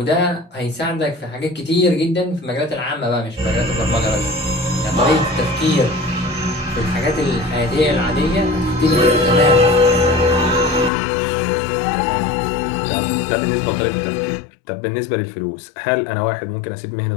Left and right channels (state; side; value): drops out; right; at 10.9 s